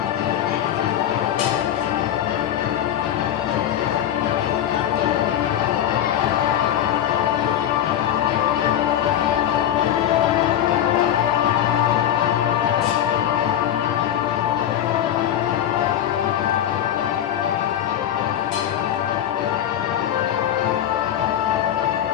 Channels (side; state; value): right; quieter; 10.7 dB